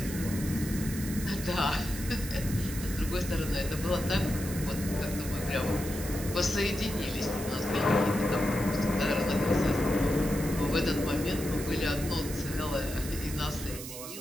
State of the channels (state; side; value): noise; right; hiss, 10 dB below the sound